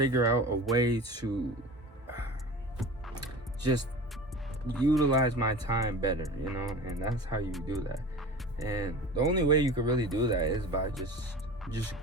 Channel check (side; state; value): both; normal; correlation 0.35